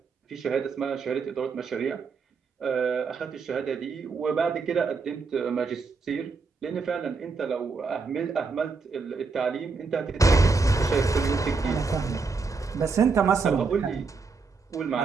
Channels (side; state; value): left; quieter; 4.5 dB